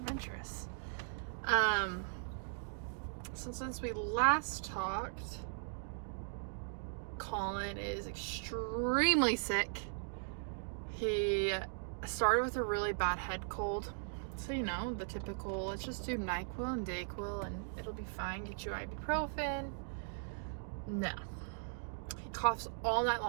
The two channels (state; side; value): silent; left; digital silence